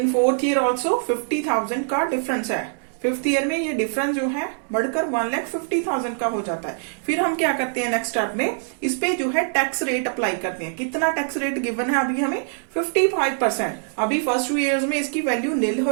fourth year also 50,000 का डिफरेंस है। फिफ्थ ईयर में ये डिफरेंस जो है बढ़कर 1,50,000 का हो जाता है। फिर हम क्या करते हैं नेक्स्ट स्टेप में? इस पे जो है टैक्स रेट अप्लाई करते हैं। कितना टैक्स रेट गिवन है अभी हमें? 55%। अभी फर्स्ट 2 years में इसकी वैल्यू नील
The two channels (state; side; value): silent; left; 63 dB below the other